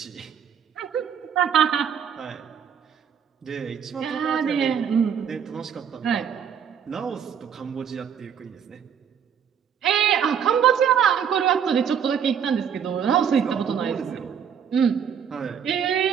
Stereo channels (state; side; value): quieter; left; 8.0 dB